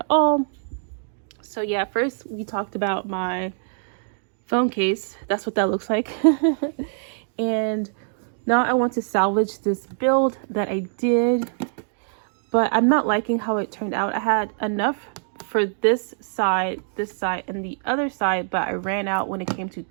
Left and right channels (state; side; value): silent; left; digital silence